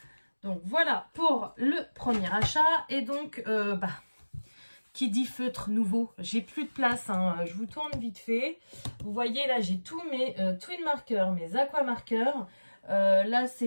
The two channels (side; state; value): both; inverted; correlation -1.00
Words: Donc voilà pour le premier achat. Et donc qui dit feutre nouveau, j'ai plus de place, hein. Je vous tourne vite fait. Vous voyez là j'ai tous mes Twin Markers, mes Aqua Markers. Là